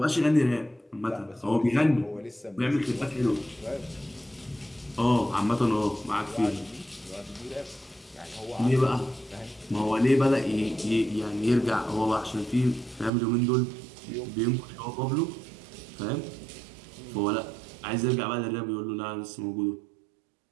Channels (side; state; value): left; drops out; at 13.1 s